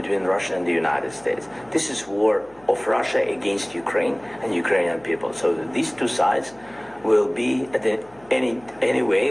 Russia and the United States. This is war of Russia against Ukraine and Ukrainian people. So these two sides will be at the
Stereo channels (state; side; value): noise; left; hum, 28 dB below the sound